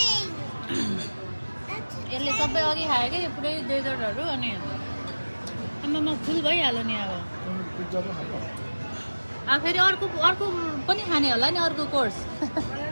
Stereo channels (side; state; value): both; inverted; correlation -1.00